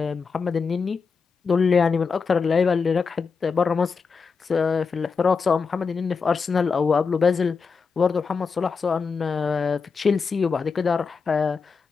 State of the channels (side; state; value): right; quieter; 5.2 dB